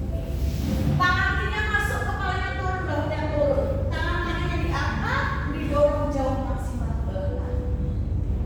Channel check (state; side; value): identical; both; correlation 1.00